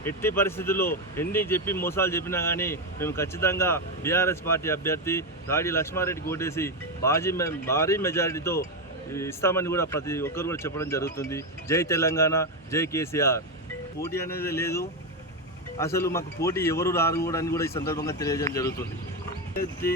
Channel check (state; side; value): normal; both; correlation 0.09